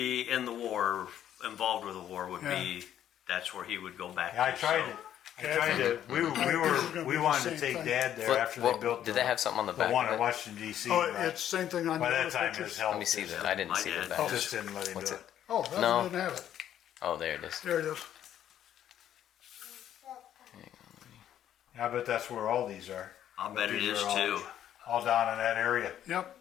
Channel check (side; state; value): right; quieter; 10.8 dB